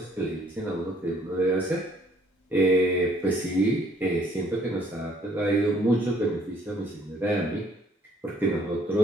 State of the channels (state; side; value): normal; both; correlation 0.61